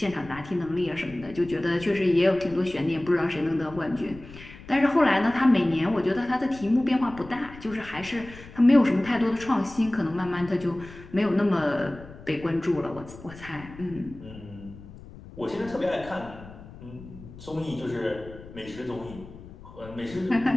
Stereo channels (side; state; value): left; noise; rumble, 17 dB below the sound